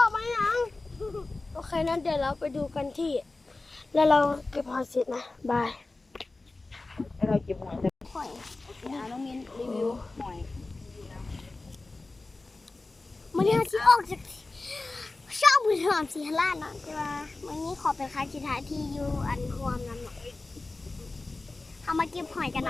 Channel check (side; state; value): right; quieter; 3.3 dB